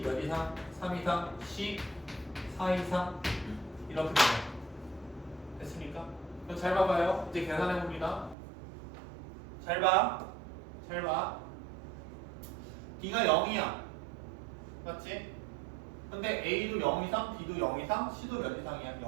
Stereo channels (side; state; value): left; drops out; at 8.3 s